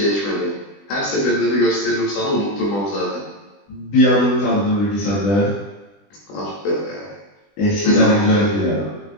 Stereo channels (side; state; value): right; late; 20 ms